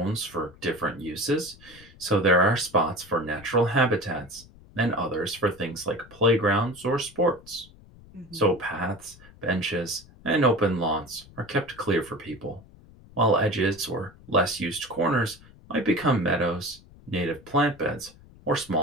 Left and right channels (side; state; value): left; noise; rumble, 23 dB below the sound